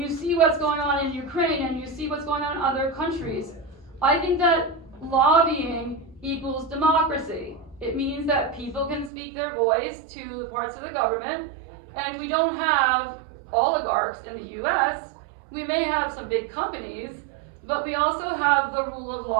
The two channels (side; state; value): left; drops out; at 9.1 s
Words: see what's going on in Ukraine and you see what's going on in other countries, I think that lobbying equals democracy. It means that people can speak their voice to the parts of the government, and we don't have oligarchs in the US. We may have some big companies, but we also have the rule of